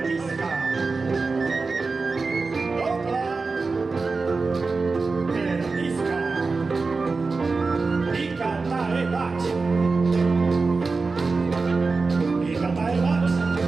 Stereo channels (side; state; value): left; quieter; 4.1 dB